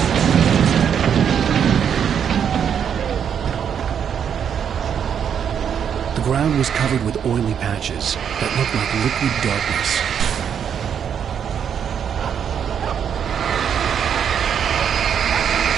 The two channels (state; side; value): quieter; left; 8.1 dB